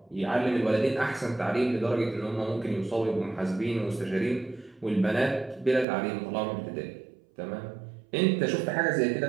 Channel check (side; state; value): left; drops out; at 5.9 s